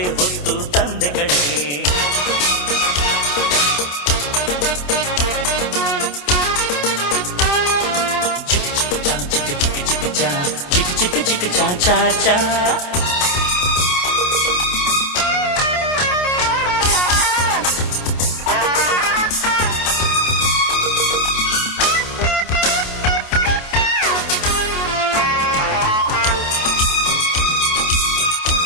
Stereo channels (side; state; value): right; late; 28 ms